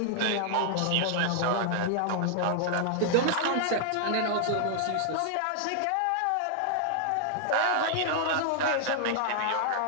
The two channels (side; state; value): both; different; correlation -0.01